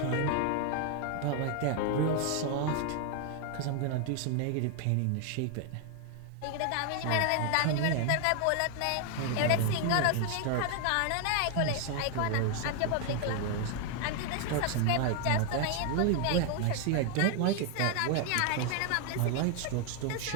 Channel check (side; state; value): both; different; correlation 0.01